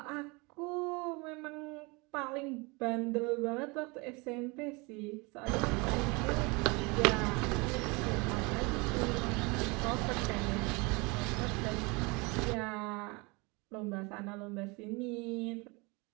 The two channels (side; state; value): left; quieter; 27.5 dB